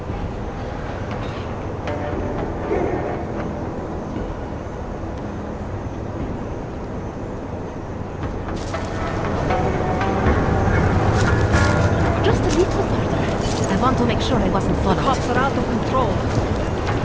Just a little further. I want to make sure I wasn't followed. Cops are out of control.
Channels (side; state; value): both; identical; correlation 1.00